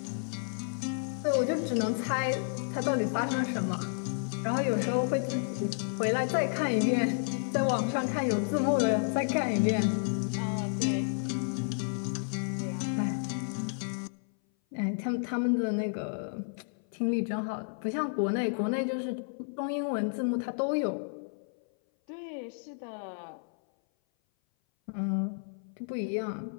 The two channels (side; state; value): right; silent; 57 dB below the other